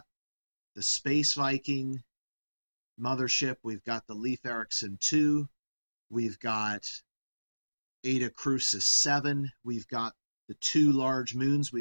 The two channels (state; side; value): inverted; both; correlation -1.00